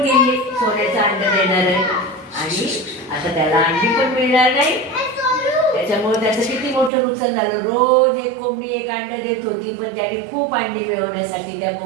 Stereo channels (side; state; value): left; drops out; at 6.9 s